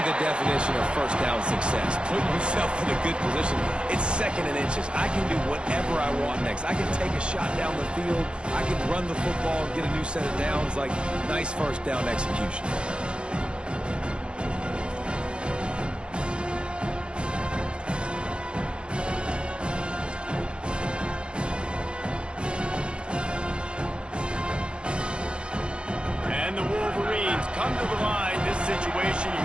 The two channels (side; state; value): left; late; 0.055 ms